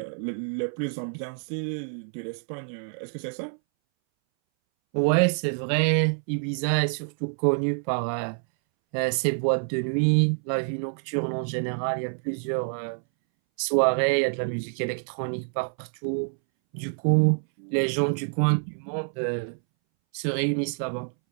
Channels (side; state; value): left; silent; 60 dB below the other